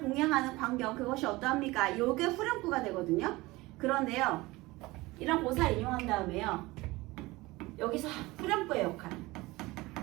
광경 그것이 어떠합니까? 이게 후렴구가 되거든요. 그런데요, 이런 고사를 인용한 다음에요, 여기서 후렴구의 역할,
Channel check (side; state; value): left; quieter; 20.9 dB